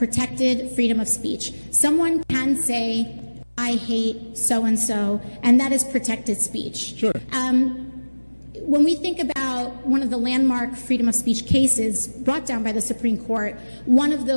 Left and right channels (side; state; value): both; inverted; correlation -1.00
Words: freedom of speech. Someone can say, I hate so-and-so, and that is protected speech. Sure. When we think about one of the landmark freedom of speech cases brought down by the Supreme Court, one of